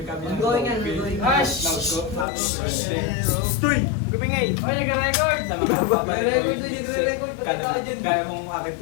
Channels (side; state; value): right; drops out; at 2.2 s